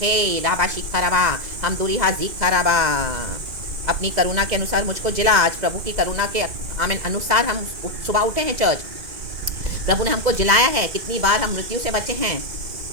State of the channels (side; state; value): left; late; 2.0 ms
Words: राबा शिखा रबा, हम दूरी हाजिखा रबा। अपनी करुणा के अनुसार मुझको जिला। आज प्रभु की करुणा के आमीन अनुसार हम सुबह उठे हैं चर्च, प्रभु ने हमको जिलाया है। कितनी बार हम मृत्यु से बचे हैं,